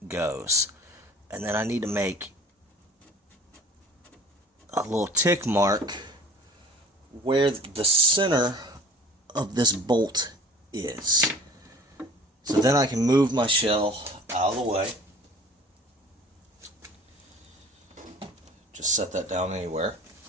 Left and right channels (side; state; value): both; normal; correlation 0.45